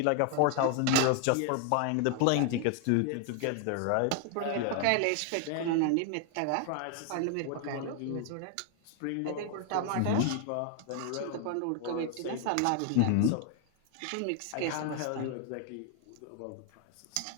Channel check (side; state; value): both; different; correlation 0.00